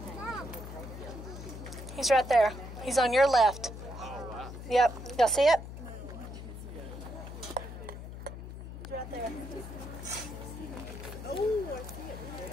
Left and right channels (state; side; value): noise; left; hum, 10 dB below the sound